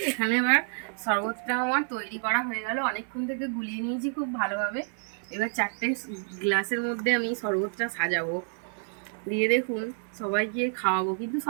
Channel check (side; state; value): left; silent; 56 dB below the other